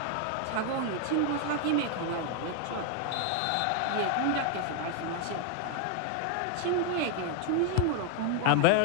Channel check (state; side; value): different; both; correlation 0.00